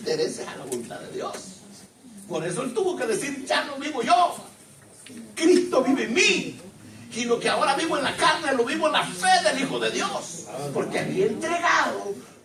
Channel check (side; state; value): both; identical; correlation 1.00